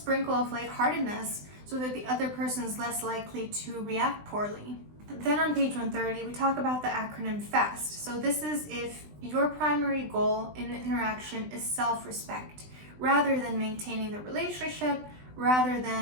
of lightheartedness so that the other person is less likely to react poorly. Then on page 130, we talk about the acronym FAST. So this is if your primary goal in an interaction is self-respect, rather than maintaining the relationship rather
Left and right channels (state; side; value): late; left; 20 ms